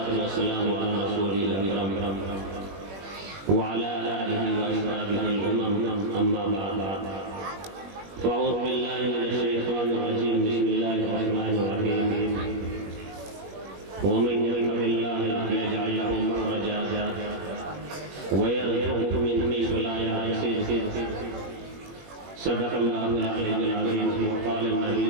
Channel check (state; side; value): late; left; 21 ms